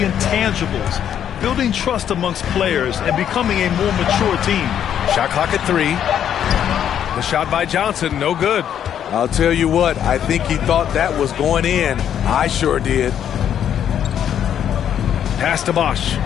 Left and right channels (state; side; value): quieter; right; 9.5 dB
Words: intangibles, building trust amongst players and becoming a more mature team. Shot clock at 3. The shot by Johnson, no good. I'll tell you what, I think he thought that was going in. I sure did. Pass to Bosch.